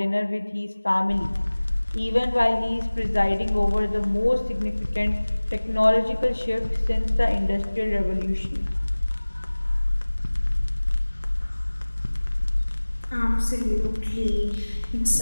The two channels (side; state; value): both; inverted; correlation -1.00